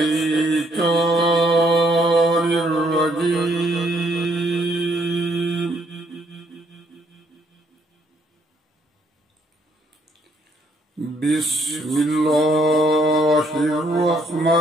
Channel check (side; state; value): both; normal; correlation 0.69